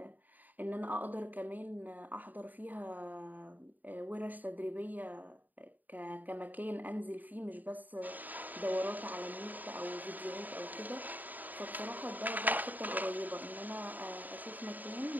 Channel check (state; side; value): late; left; 0.084 ms